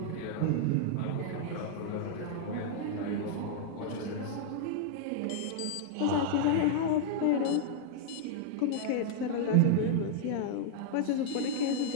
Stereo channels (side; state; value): both; different; correlation -0.01